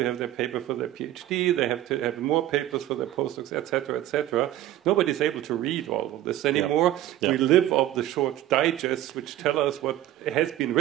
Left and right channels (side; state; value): left; quieter; 13.6 dB